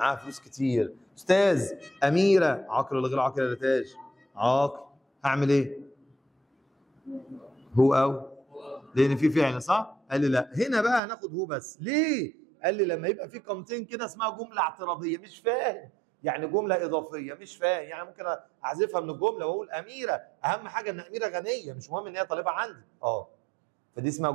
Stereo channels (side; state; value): left; drops out; at 11.0 s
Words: فلوس كتير. استاذ اميره عاقل ولا غير عاقل يا تاج؟ عاقل. هعمل ايه؟ هو او لان في فعل صح؟ قال لي لا، هنا بقى هناخد هو بس. ليه؟ قال لي لما يبقى في قامتين كده اسمها جمله اعتراضيه. مش فاهم يعني جمله اضافيه. مش فاهم يعني ممكن احذفها من الجمله واقول اميره، اهم حاجه ان اميره غنيه، مش مهم ان هي طالبه عندي. فدي اسمها